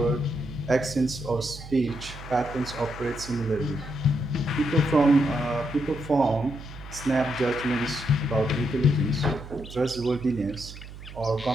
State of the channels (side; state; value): right; noise; hum, 14 dB below the sound